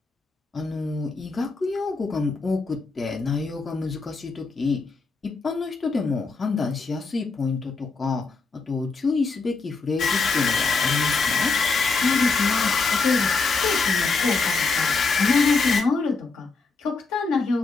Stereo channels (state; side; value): quieter; right; 4.2 dB